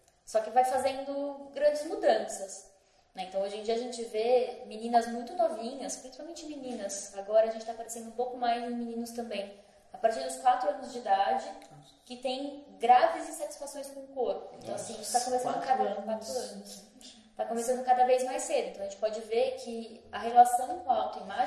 Só que vai fazendo grandes mudanças. Então, hoje em dia a gente vê meninas muito novinhas, principalmente meninas. Agora a gente está aparecendo um pouco mais em meninos também. A partir dos 4 anos de idade, que tem graves insatisfações com o corpo. Então, assim, isso está começando 4 anos. Está começando cada vez mais cedo. Então, a gente pode ver que a relação com a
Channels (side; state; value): both; identical; correlation 1.00